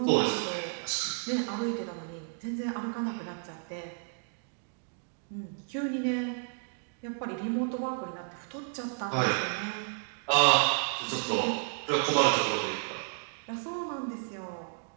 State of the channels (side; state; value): left; silent; 56 dB below the other